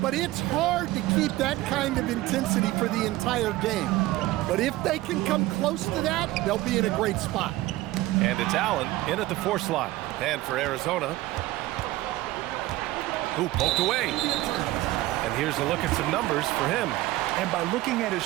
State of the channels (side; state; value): left; quieter; 17.5 dB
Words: it's hard to keep that kind of intensity for the entire game. But if they can come close to that, they'll be in a great spot. And it's Allen in at the 4 slot. And for Arizona, who poked away. And here's a look at some numbers for him. And by looking at his